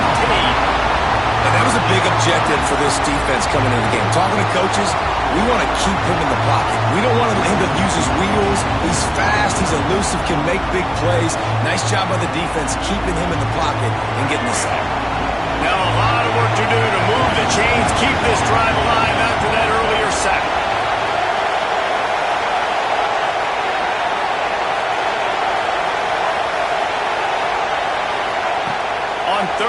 And that was a big objective for this defense coming into the game. Talking to coaches, we want to keep him in the pocket. We don't want him to use his wheels. He's fast, he's elusive, can make big plays. Nice job by the defense keeping him in the pocket and getting the sack. Now a lot of work to do to move the chains, keep this drive alive after that earlier sack. On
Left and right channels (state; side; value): identical; both; correlation 1.00